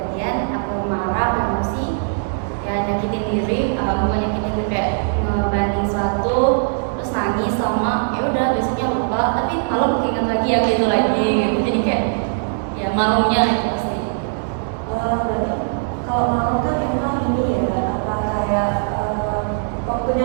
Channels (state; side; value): silent; left; 64 dB below the other